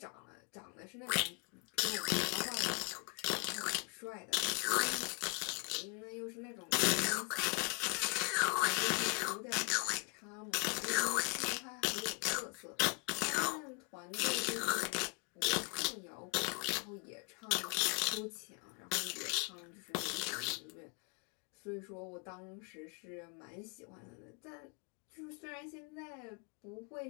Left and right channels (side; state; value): right; quieter; 31.6 dB